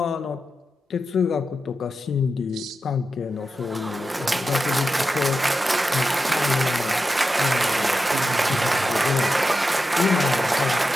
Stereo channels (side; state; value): both; normal; correlation 0.90